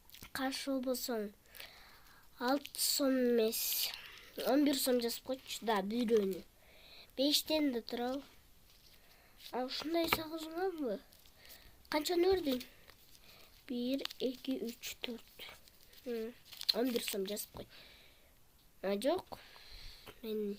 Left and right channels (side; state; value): both; identical; correlation 1.00